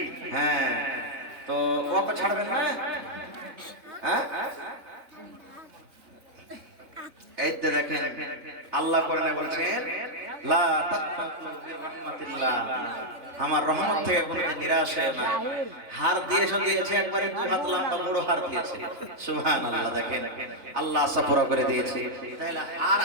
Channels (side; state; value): left; late; 3.4 ms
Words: হ্যাঁ তো ওকে ছাড়বেন না? হ্যাঁ এই তো দেখেন আল্লাহ কোরআনে বলছেন লা তাকনাতু মির রাহমাতিল্লাহ, আমার রহমত থেকে কোনদিন নিরাশ হয় না। হার দিয়েছে দিয়েছে একবারে হাত লম্বা বড় হার দিয়েছে সুবহানাল্লাহ। দেখেন আল্লাহ আশা পুরো করে দিয়েছে। তাহলে হার